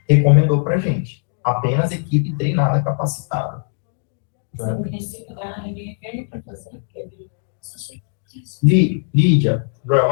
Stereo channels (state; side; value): silent; right; digital silence